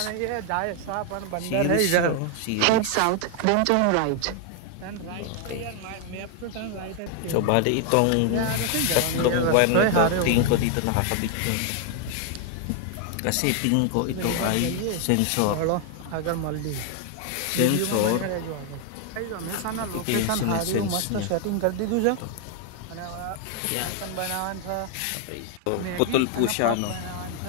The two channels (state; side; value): different; both; correlation 0.00